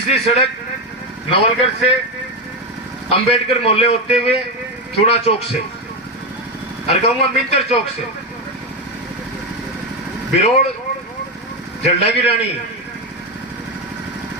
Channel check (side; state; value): both; normal; correlation 0.10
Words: सड़क नवलगढ़ से अंबेडकर मोहल्ले होते हुए चूड़ा चौक से, और कहूंगा मिंतर चौक से बिरोड़, जल्डा की रानी,